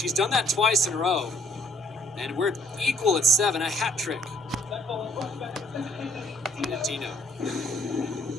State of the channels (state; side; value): normal; both; correlation 0.63